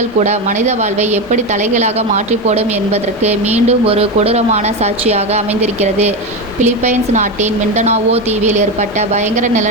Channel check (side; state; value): both; normal; correlation 0.16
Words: கூட மனித வாழ்வை எப்படி தலைகீழாக மாற்றி போடும் என்பதற்கு மீண்டும் ஒரு கொடூரமான சாட்சியாக அமைந்திருக்கிறது. பிலிப்பைன்ஸ் நாட்டின் மிண்டனாவோ தீவில் ஏற்பட்ட பயங்கர